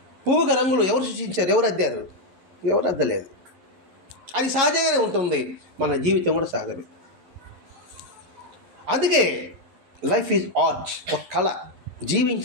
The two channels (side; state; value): left; late; 11 ms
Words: పువ్వుగా రంగులు ఎవరు సృష్టించారు? ఎవరు అద్దారు? ఎవరు అద్దలేదు. అది సహజంగానే ఉంటుంది. మన జీవితం కూడా సహజమే. అందుకే లైఫ్ ఈజ్ ఆర్ట్, ఒక కళ.